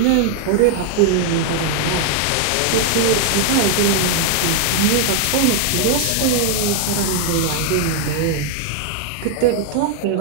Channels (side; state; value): both; different; correlation 0.00